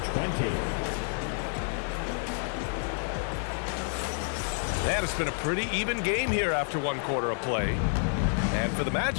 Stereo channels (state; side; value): silent; right; 56 dB below the other